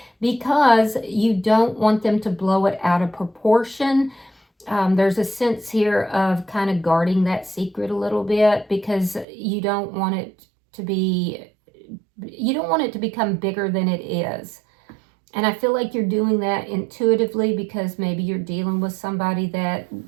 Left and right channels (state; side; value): drops out; left; at 9.2 s